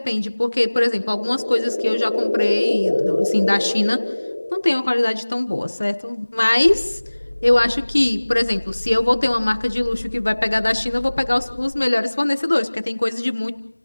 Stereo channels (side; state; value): both; inverted; correlation -1.00